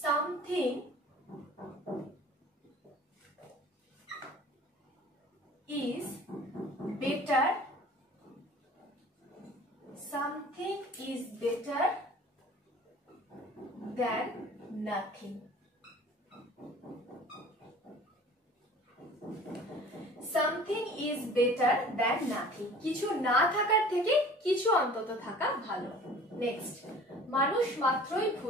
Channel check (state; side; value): normal; both; correlation 0.46